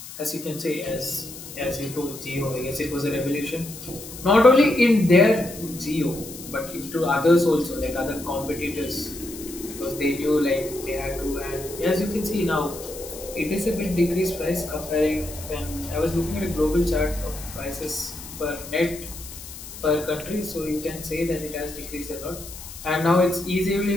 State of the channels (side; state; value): left; noise; hiss, 13 dB below the sound